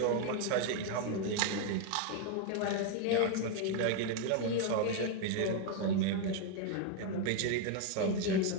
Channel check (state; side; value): different; both; correlation 0.01